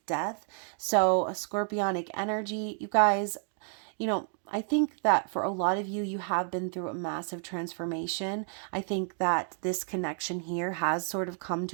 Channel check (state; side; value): silent; left; 57 dB below the other